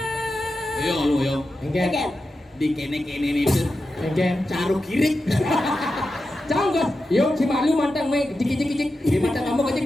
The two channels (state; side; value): normal; both; correlation 0.90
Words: Yo. Enggak. Di kene itu Enggak. caru kirik. Canggot. Yuk si malu mantang main kicik. Di mata kamu kecik